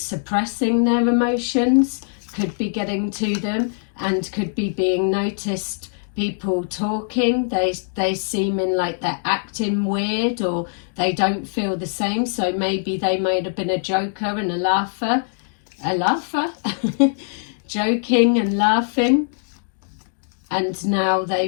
their emotions could be getting to them and could be being noticed. People talking, they seeming like they're acting weird or they don't feel the same. So maybe they might have been a joker and a laugher, joking and laughing, and now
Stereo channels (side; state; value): right; silent; digital silence